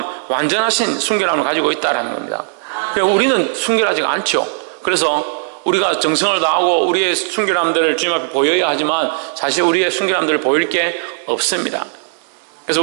완전하신 순결함을 가지고 있다는 겁니다. 우리는 순결하지가 않죠. 그래서 우리가 정성을 다하고 우리의 순결함들을 주님 앞에 보여야 하지만 사실 우리의 순결함들을 보일 게 없습니다. 그래서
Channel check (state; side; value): silent; left; digital silence